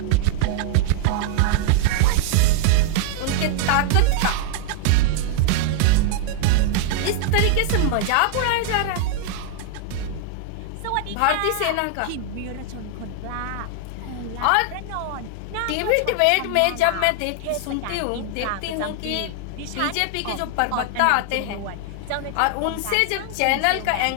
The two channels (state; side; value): different; both; correlation -0.01